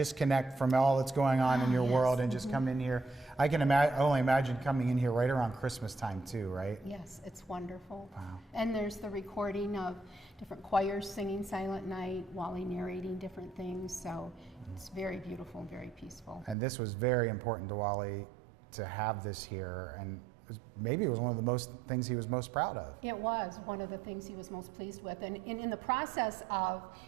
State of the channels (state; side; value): drops out; left; at 16.6 s